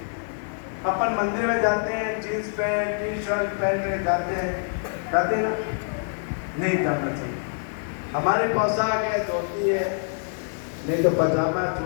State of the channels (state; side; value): silent; right; digital silence